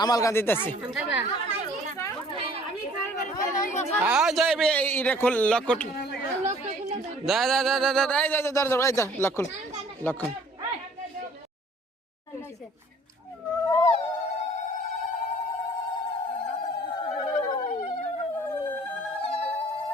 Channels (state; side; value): normal; both; correlation 0.54